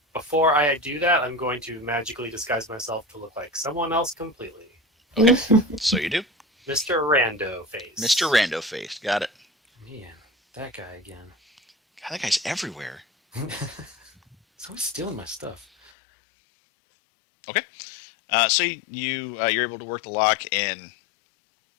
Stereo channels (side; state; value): right; drops out; at 15.9 s